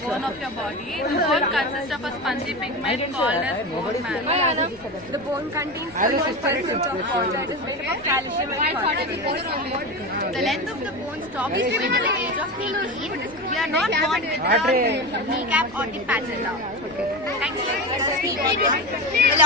bone of your body. The bone consists of a spongy pigment called as bone marrow. The bone contains 31% of water. It is made up of calcium and phosphorus. The length of the bone stop is between the age of 18. We are not born with the kneecap or the patella. Thank you. A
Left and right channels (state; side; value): noise; left; rumble, 24 dB below the sound